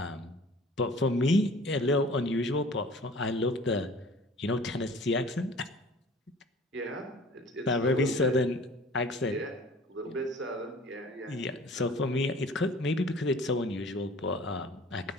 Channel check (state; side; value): normal; both; correlation 0.47